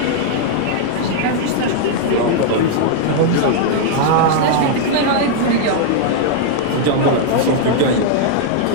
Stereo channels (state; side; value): different; both; correlation -0.01